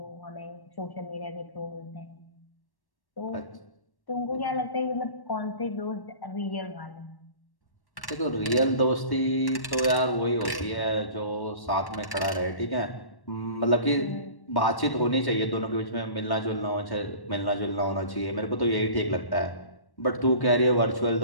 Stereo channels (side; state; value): right; late; 1.1 ms